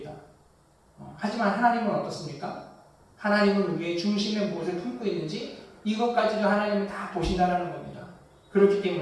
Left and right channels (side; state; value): both; identical; correlation 1.00